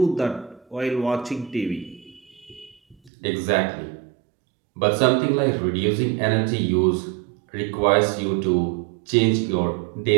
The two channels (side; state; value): left; drops out; at 3.1 s